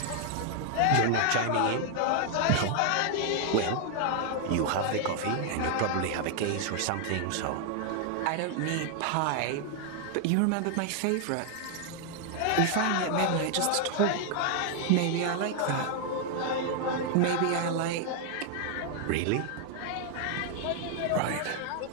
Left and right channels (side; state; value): both; different; correlation 0.00